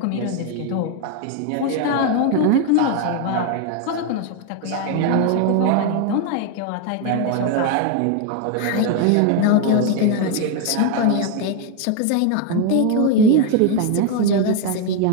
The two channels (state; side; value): different; both; correlation 0.01